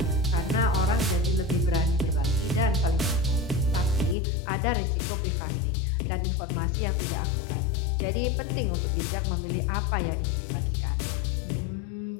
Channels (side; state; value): right; drops out; at 4.2 s